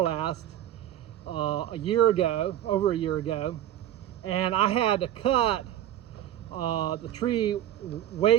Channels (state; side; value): quieter; left; 12.0 dB